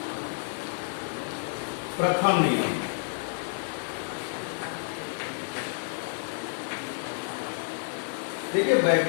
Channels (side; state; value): right; silent; digital silence